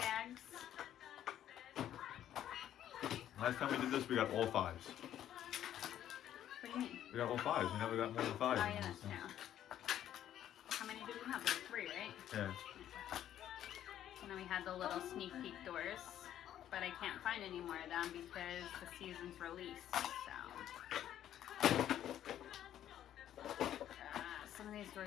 Last time we did this, we got all 5s. What do you mean? We got all 5s. We never got more than 5. Oh yeah, that's true. How many did we have? Like 3, right? Yeah. And then we had the little sneak peek doors, but I can't find any more of them because the season's released. So some of these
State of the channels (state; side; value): quieter; right; 11.2 dB